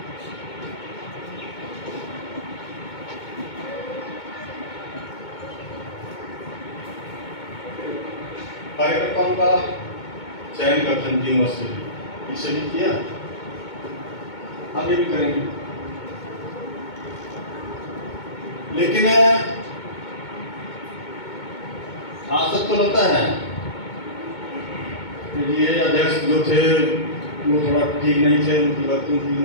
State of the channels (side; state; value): right; late; 2.2 ms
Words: कार्यकर्ताओं का चयन करते हैं 3 वर्ष से, इससे भी किया, आगे भी करेंगे। लेकिन आज तक तो लगता है कि ये अध्यक्ष जो थे वो थोड़ा ठीक नहीं थे, उनकी वर्किंग ठीक